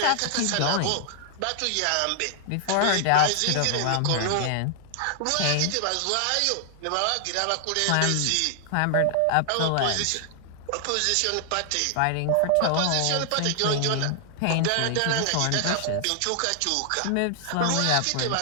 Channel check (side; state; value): both; different; correlation 0.00